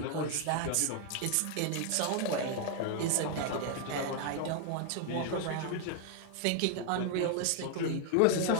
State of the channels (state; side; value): different; both; correlation 0.00